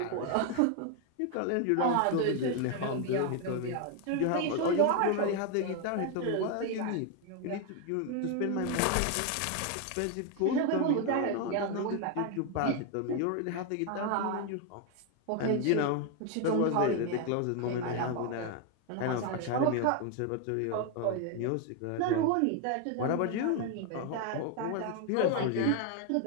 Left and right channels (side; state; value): both; different; correlation 0.01